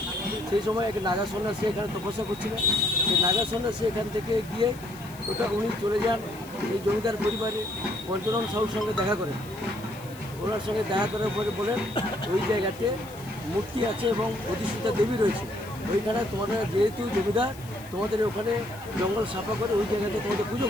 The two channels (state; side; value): noise; left; hiss, 20 dB below the sound